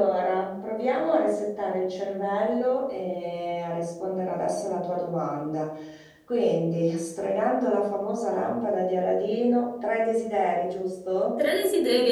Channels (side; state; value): both; identical; correlation 1.00